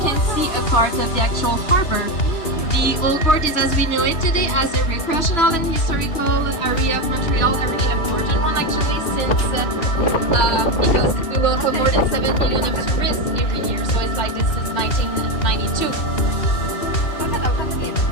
can see a part of the actual harbor. The Old Port is as we know it today as a recreational and historical area of Montreal, a really important one actually since because we welcome more than 7 million of tourists every year, so it's like this is 1992.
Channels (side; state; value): right; late; 2.8 ms